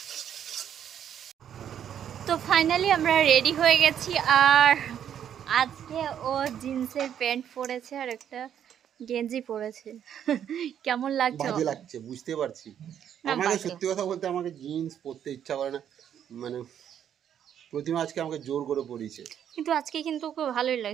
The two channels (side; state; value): left; quieter; 9.4 dB